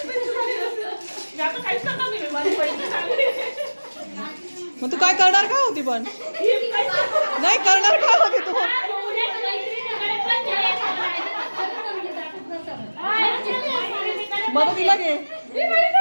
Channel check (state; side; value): inverted; both; correlation -1.00